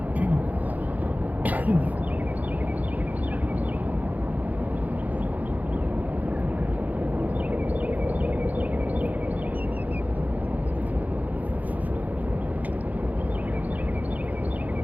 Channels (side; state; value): left; late; 0.079 ms